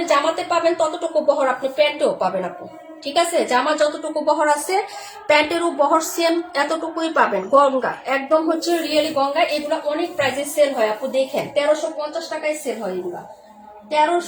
জামাতে পাবেন ততটুকু বহর আপনি প্যান্টেও পাবেন আপু, ঠিক আছে? জামা যতটুকু বহর আছে প্যান্টেরও বহর সেম এতটুকুই পাবেন। গঙ্গা একদম হচ্ছে রিয়েলি গঙ্গা, এগুলো অনেক প্রাইসে সেল হয় আপু, দেখেন 1350 টাকায় সেল হয় এগুলা,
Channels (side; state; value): both; identical; correlation 1.00